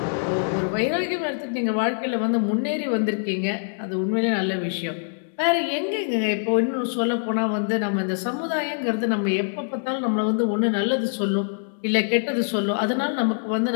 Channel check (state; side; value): silent; right; digital silence